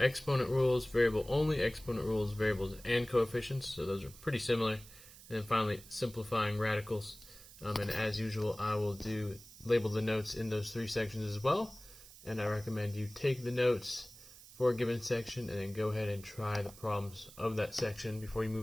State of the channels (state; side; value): noise; right; hiss, 19 dB below the sound